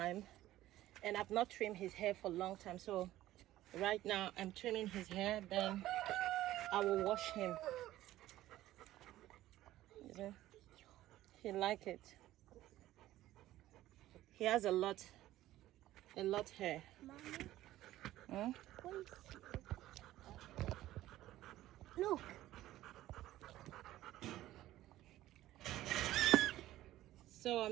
and I've not trimmed his hair for a long time. So right now I'm trimming his hair, then I will wash him. He like it. He has a lot hair. Mommy, look. So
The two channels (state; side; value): quieter; left; 14.8 dB